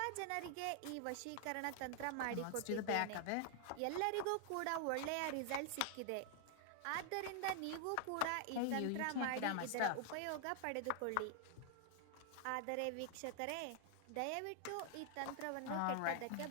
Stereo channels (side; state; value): both; different; correlation 0.00